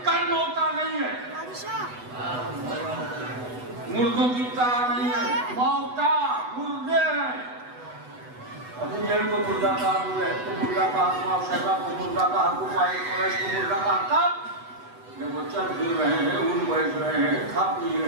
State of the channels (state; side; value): late; left; 8.1 ms